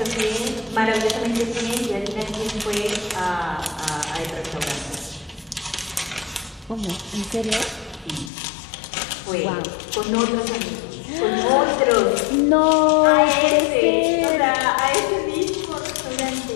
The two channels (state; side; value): drops out; right; at 8.3 s